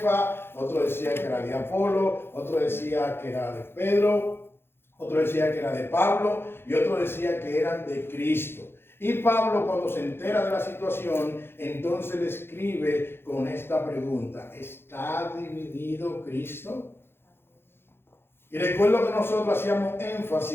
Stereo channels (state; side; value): late; right; 0.11 ms